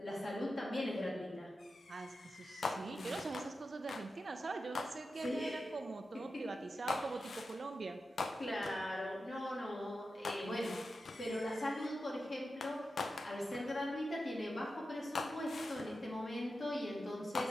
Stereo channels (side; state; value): both; normal; correlation 0.91